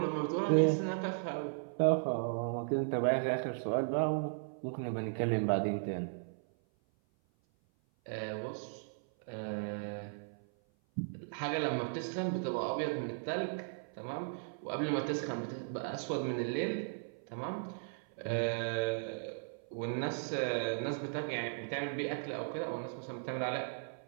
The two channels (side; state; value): left; silent; 53 dB below the other